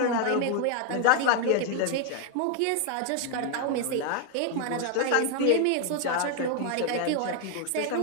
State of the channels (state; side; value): different; both; correlation 0.00